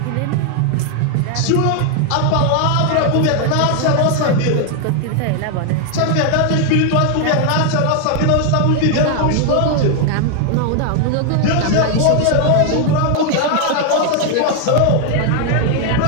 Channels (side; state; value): both; different; correlation 0.00